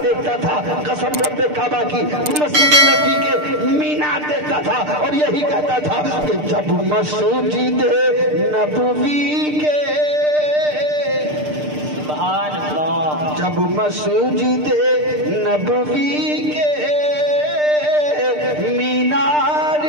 دیکھتا تھا، قسم رب کعبہ کی مسجد نبی کے مینار دیکھتا تھا اور یہی کہتا تھا کہ جب مسجد نبوی کے اب مسجد نبوی کے مینار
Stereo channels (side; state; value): left; late; 6.7 ms